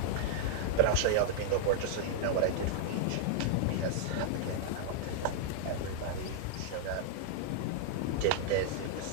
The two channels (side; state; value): both; different; correlation -0.01